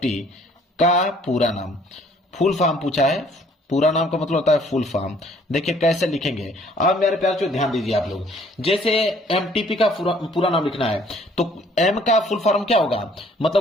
का पूरा नाम, फुल फॉर्म पूछा है, पूरा नाम का मतलब होता है फुल फॉर्म। देखिए कैसे लिखेंगे, अब मेरे प्यारे ध्यान दीजिए आप लोग, जैसे एमटीपी का पूरा नाम लिखना है तो एम का फुल फॉर्म क्या होगा,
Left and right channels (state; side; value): normal; both; correlation 0.59